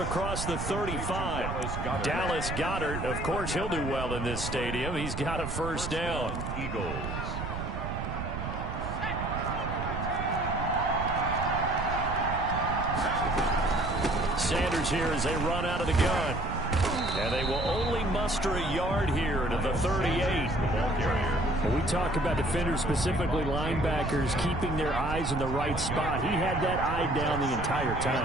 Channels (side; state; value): right; noise; rumble, 5 dB below the sound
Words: the 35. Dallas Goedert, of course, he'll do well in this stadium. He's got a first down. Eagles. Sanders here as they run out of the gun. And they will only muster a yard here to the 38. When we talk about defenders, specifically linebackers, keeping their eyes in the right spot, he had that eye down the entire